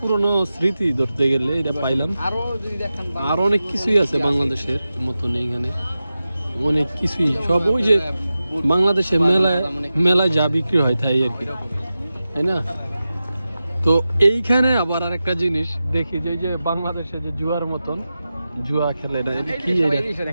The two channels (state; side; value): inverted; both; correlation -0.93